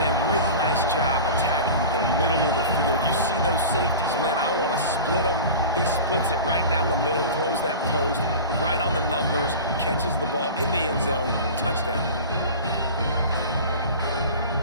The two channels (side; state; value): both; inverted; correlation -0.34